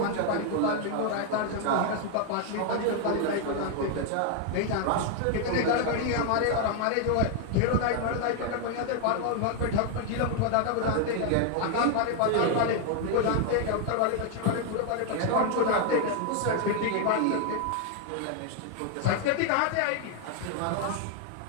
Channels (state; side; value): different; both; correlation 0.00